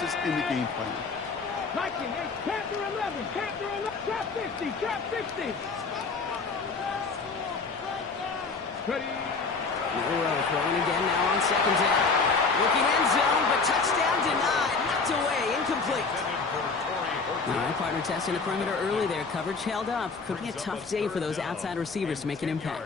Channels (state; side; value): quieter; right; 4.5 dB